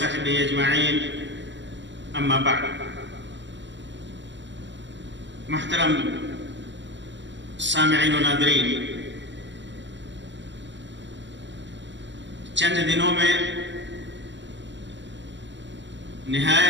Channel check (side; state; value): left; late; 0.53 ms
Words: أجمعين أما بعد. محترم سامعین و ناظرین، چند دنوں میں